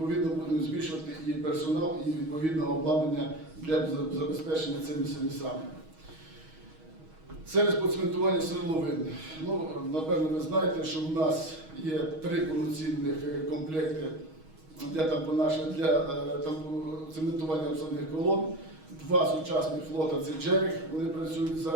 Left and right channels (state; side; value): late; left; 6.3 ms